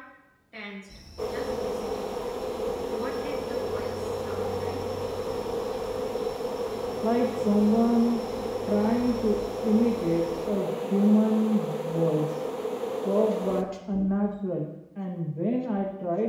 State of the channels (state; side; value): identical; both; correlation 1.00